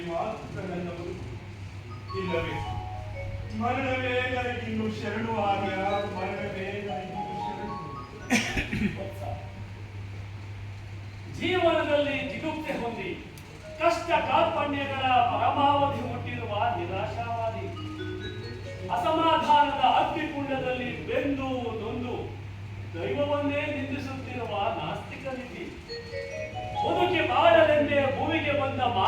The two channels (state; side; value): identical; both; correlation 1.00